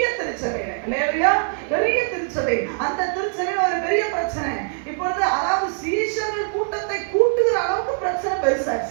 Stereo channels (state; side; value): silent; left; 61 dB below the other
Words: திருச்சபையில, அல்லேலூயா, பெரிய திருச்சபை, அந்த திருச்சபையில ஒரு பெரிய பிரச்சனை. இப்பொழுது அதாவது சீஷர்கள் கூட்டத்தை கூட்டுகிற அளவுக்கு பிரச்சனை